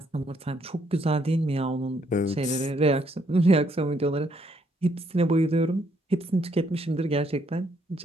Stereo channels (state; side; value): normal; both; correlation 0.71